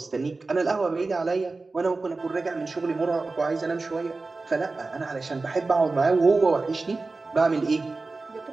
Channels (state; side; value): quieter; left; 3.6 dB